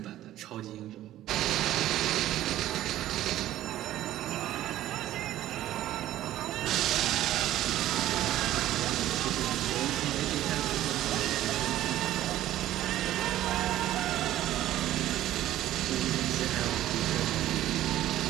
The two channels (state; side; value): quieter; left; 13.7 dB